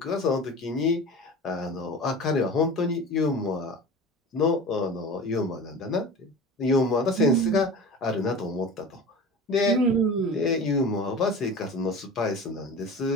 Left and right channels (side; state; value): both; normal; correlation 0.35